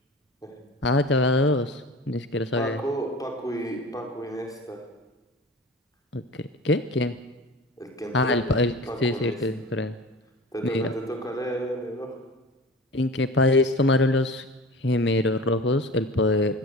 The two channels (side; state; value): both; normal; correlation 0.36